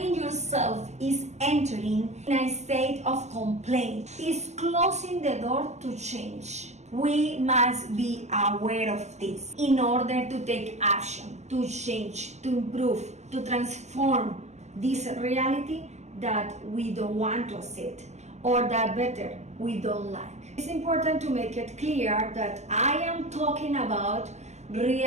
yourself is entering in a state of complaint, is closing the door to change. We must be aware of this in order to take action, to change, to improve, to transform this reality that we don't want to accept, or that better, we don't like. It's important to make it clear that I am talking about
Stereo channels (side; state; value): left; late; 0.33 ms